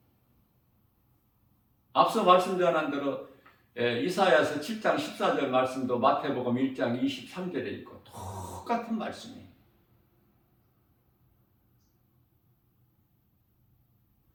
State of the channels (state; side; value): identical; both; correlation 1.00